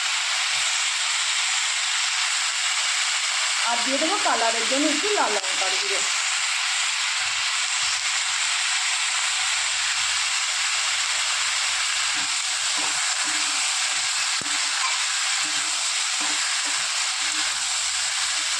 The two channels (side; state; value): both; identical; correlation 1.00